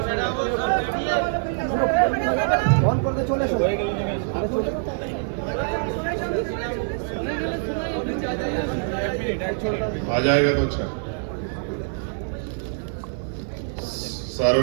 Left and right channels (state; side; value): silent; left; 62 dB below the other